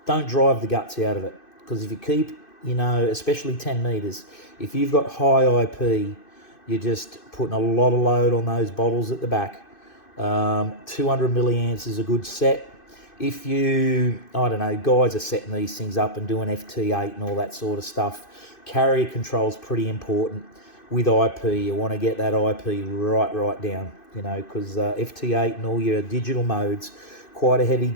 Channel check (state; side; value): late; right; 2.5 ms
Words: don't drive the guts out of it. Because if you keep, you know, especially 10 metres, if you've got high IP, you're just putting a lot of load on those bottles at the back. 200 milliamps is a good set. If you, I don't know, guys are setting these things up and doing FT8 and all that sort of stuff, carrier control is pretty important. with IP. You want to get that IP right down, you know, because FT8 and all your digital modes, quite a heavy